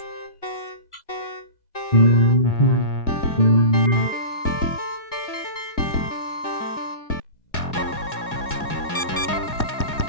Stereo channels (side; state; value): right; late; 2.0 ms